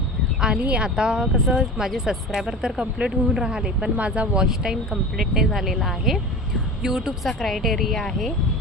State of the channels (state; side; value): normal; both; correlation 0.33